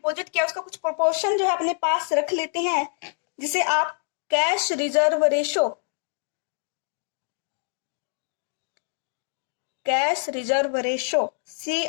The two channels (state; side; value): silent; right; digital silence